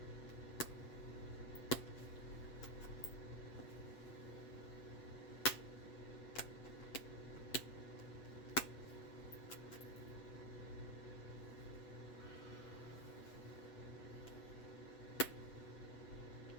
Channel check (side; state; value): right; late; 8.2 ms